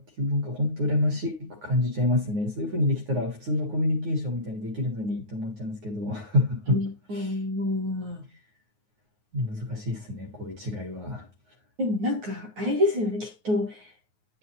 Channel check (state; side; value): late; left; 9.5 ms